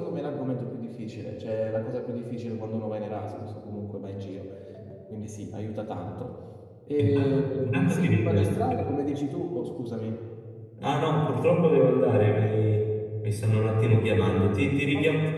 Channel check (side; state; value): both; identical; correlation 1.00